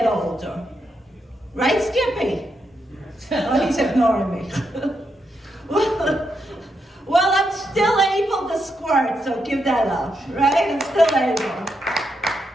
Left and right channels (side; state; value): both; normal; correlation 0.82